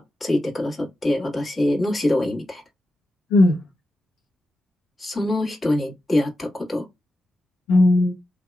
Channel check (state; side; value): normal; both; correlation 0.91